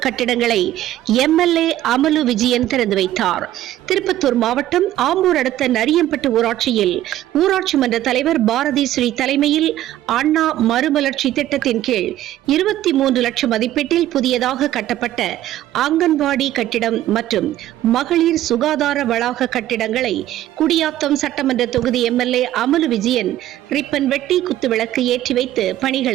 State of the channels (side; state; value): left; quieter; 13.6 dB